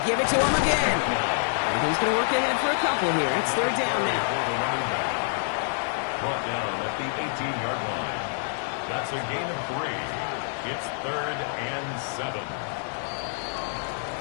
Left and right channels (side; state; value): right; silent; 60 dB below the other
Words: give it to him again. And he's going to work ahead for a couple here. It's 3rd down now. It's a gain of 3. It's 3rd and 7.